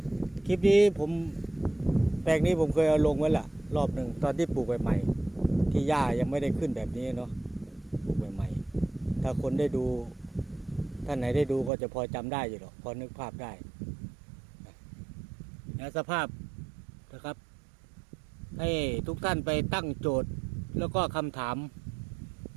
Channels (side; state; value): left; drops out; at 11.7 s